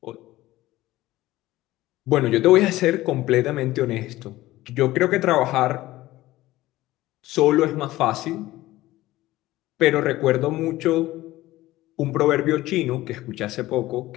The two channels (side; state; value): right; quieter; 16.8 dB